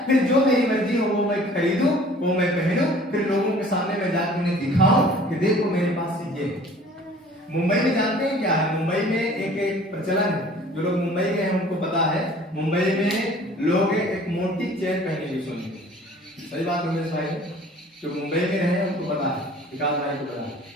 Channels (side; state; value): both; normal; correlation 0.50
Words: फिर जो मेरी मर्जी हो वो मैं खरीदूं, वो मैं पहनूं, फिर लोगों के सामने मैं जाकर उन्हें दिखाऊं कि देखो मेरे पास ये है। मुंबई में जानते हैं क्या है? मुंबई में एक प्रचलन है, जो लोग मुंबई गए हैं उनको पता है। मुंबई में लोग एक मोटी चेन पहने सोने की, सही बात है मेरे भाई, जो मुंबई में रहे उनको पता है, विकास भाई को पता है।